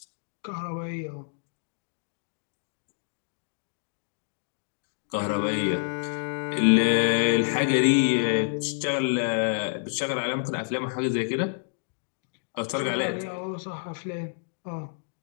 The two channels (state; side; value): silent; right; digital silence